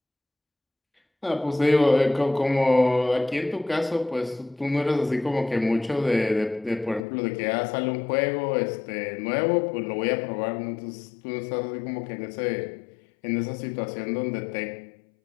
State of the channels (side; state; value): right; drops out; at 7.1 s